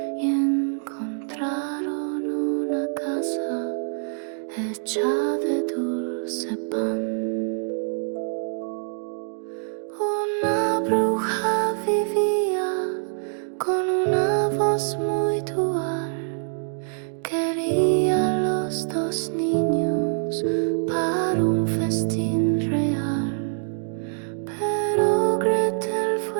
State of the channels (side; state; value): left; silent; digital silence